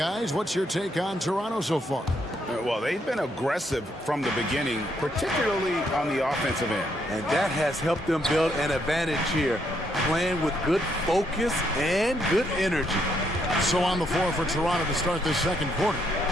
what's your take on Toronto so far? Well, they've been aggressive from the beginning, particularly on the offensive end. And that has helped them build an advantage here, playing with good focus and good energy. So on the floor for Toronto to start this second quarter.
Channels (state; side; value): normal; both; correlation 0.74